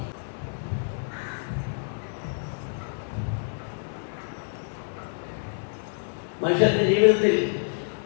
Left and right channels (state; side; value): silent; right; digital silence